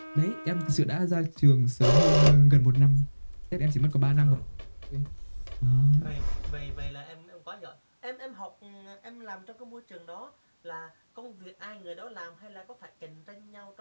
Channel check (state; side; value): inverted; both; correlation -1.00